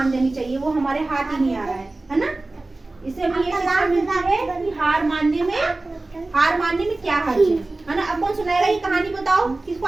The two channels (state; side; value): quieter; left; 3.1 dB